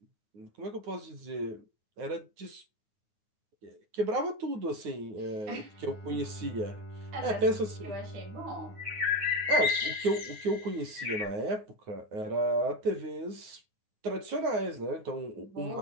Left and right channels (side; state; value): left; late; 9.6 ms